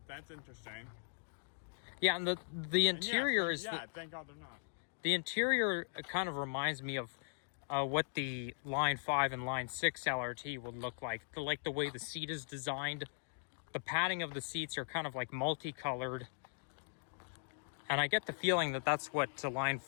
That's interesting. Yeah, and the interior is... Yeah, thank God they're not. The interior kind of reminds me of what the Line 5 and Line 6 LRT would look like. The way the seat is designed. The padding of the seats are kind of like multicolored. And I get the feeling that that's what Line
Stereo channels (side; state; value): right; silent; digital silence